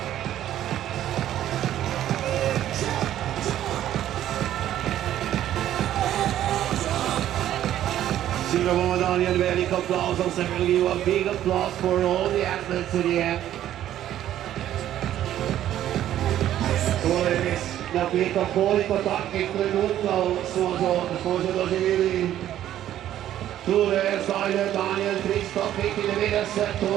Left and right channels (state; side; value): quieter; left; 12.0 dB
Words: Senior woman Daniel, very big applause. I'm going to give you a big applause for all the athletes to the end. La pietra polico tacchi creduto suoso dosi vili Tule Zajle Daniel Tristo Piti de vede